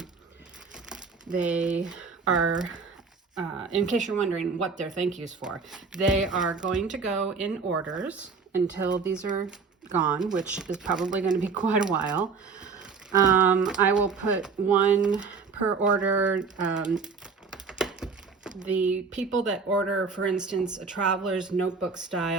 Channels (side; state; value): left; quieter; 5.0 dB